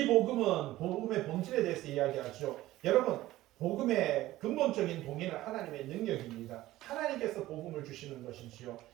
복음은 복음의 본질에 대해서 이야기하죠. 여러분 복음의 근본적인 동의는 하나님의 능력입니다. 하나님께서 복음을 주시는 것이지요.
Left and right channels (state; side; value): quieter; left; 16.1 dB